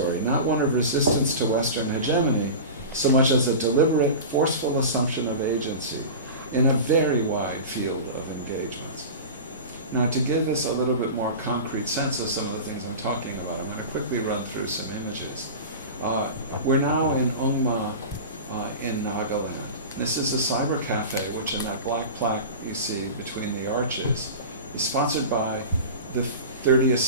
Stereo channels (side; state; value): both; inverted; correlation -0.31